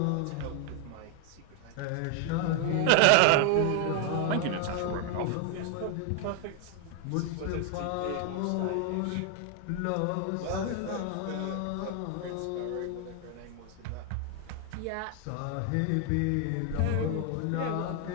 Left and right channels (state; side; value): different; both; correlation 0.00